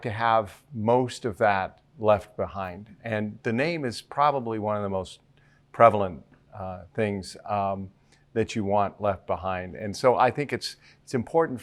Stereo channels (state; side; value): identical; both; correlation 1.00